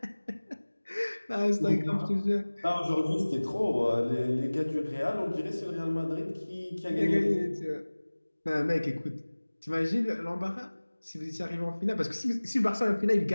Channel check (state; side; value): inverted; both; correlation -1.00